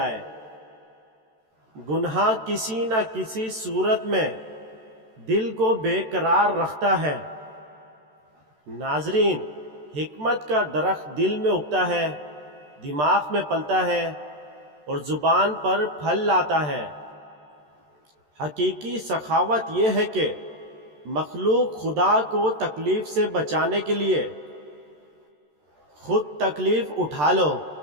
گناہ کسی نہ کسی صورت میں دل کو بے قرار رکھتا ہے۔ ناظرین، حکمت کا درخت دل میں اگتا ہے، دماغ میں پلتا ہے اور زبان پر پھل لاتا ہے۔ حقیقی سخاوت یہ ہے کہ مخلوق خدا کو تکلیف سے بچانے کے لیے خود تکلیف اٹھا لو۔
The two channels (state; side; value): late; left; 13 ms